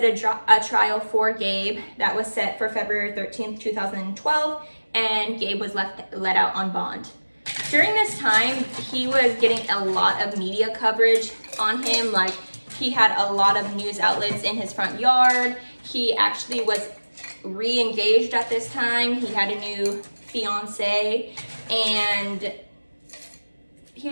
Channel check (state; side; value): inverted; both; correlation -1.00